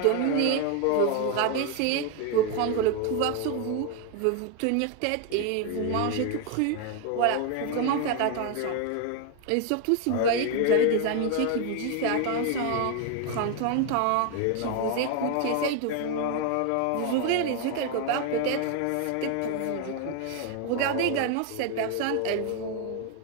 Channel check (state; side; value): different; both; correlation 0.01